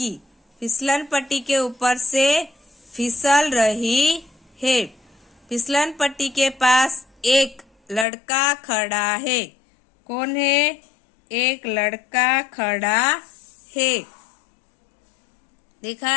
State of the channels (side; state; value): right; drops out; at 8.1 s